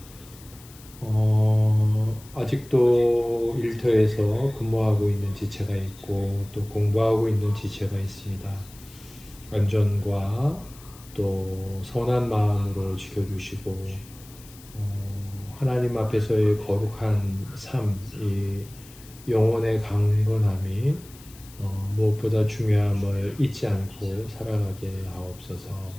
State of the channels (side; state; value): left; noise; hiss, 22 dB below the sound